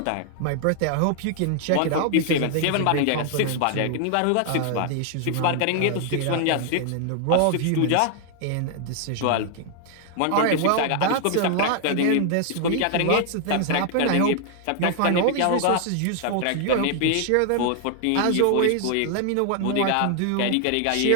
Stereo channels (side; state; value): both; different; correlation 0.00